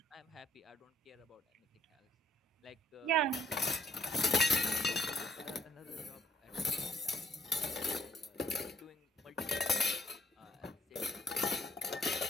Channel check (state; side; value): normal; both; correlation 0.63